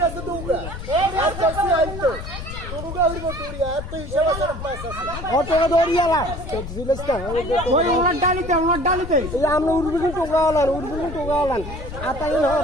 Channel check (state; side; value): noise; left; rumble, 9 dB below the sound